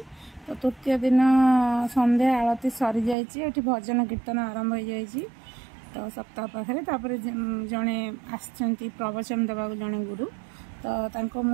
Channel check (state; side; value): drops out; left; at 3.2 s